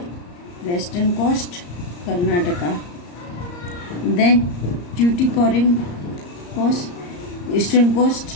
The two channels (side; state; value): right; late; 34 ms